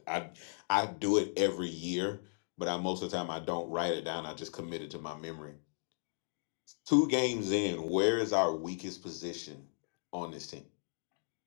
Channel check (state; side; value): silent; right; digital silence